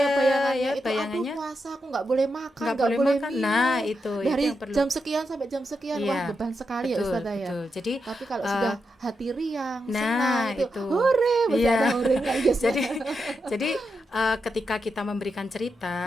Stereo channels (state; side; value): normal; both; correlation 0.86